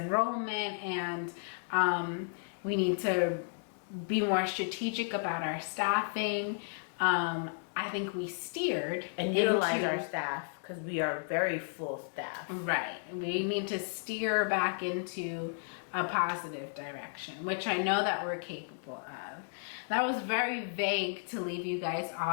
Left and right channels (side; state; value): right; silent; digital silence